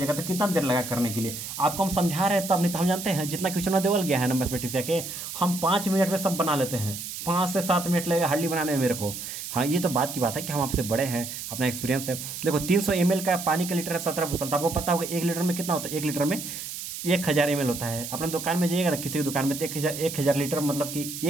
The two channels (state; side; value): noise; right; hiss, 8 dB below the sound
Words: तो कितना देर लगा करने के लिए, आपको हम समझा रहे हैं तब, नहीं तो हम जानते हैं जितना क्वेश्चन देवल गया है ना मैथमेटिक्स के, हम 5 मिनट में सब बना लेते हैं, 5 से 7 मिनट लगेगा हार्डली बनाने में मेरे को। हाँ, ये तो बात की बात है कि हम आपसे बड़े हैं, अपना एक्सपीरियंस है। देखो 300 ml का पानी का लीटर है 17 बोतल, तो आपको पता होगा 1 लीटर में कितना होता है, 1 लीटर में 1000 ml होता है। अपने दुकान में जाइएगा ना, किसी भी दुकान में, तो 1000 लीटर मतलब कि